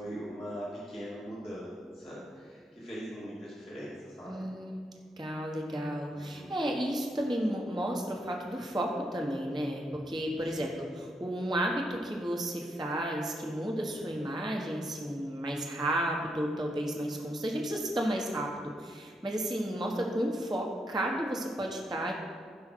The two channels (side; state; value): both; normal; correlation 0.79